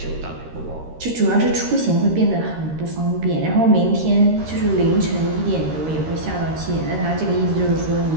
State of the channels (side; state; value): left; late; 13 ms